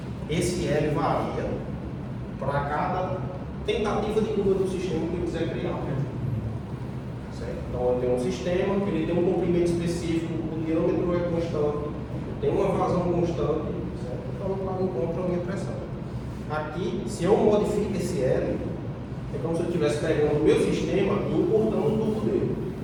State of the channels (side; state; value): both; identical; correlation 1.00